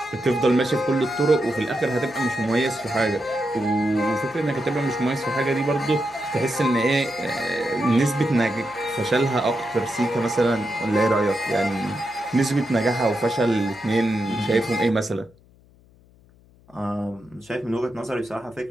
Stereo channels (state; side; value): noise; left; hum, 28 dB below the sound